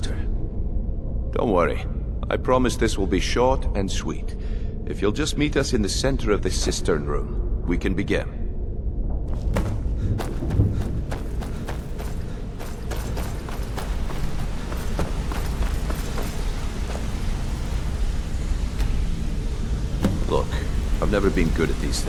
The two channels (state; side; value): identical; both; correlation 1.00